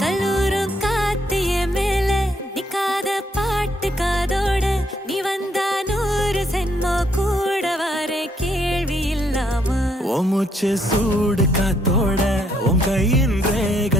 கல்லூரும் காத்திய மேல நிக்காத பாட்டு காதோட நீ வந்தா 100 சென்மோ கூட வர கேள்வி இல்லாம ஓ மூச்சு சூடு காத்தோட உன் கையின்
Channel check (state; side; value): normal; both; correlation 0.72